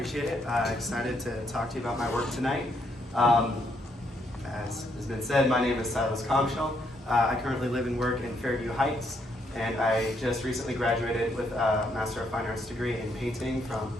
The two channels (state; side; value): normal; both; correlation 0.74